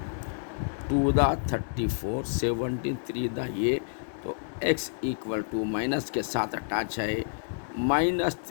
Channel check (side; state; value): right; silent; digital silence